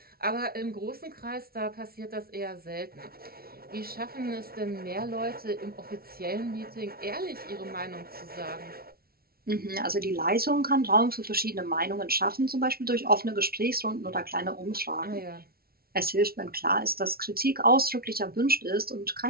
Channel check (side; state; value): left; late; 0.44 ms